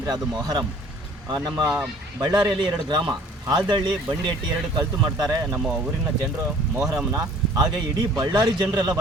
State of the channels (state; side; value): normal; both; correlation 0.53